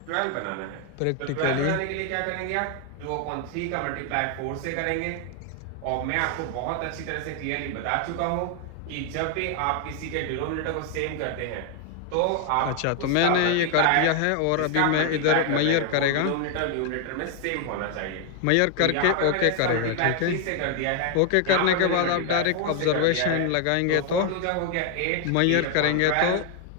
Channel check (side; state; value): both; different; correlation 0.00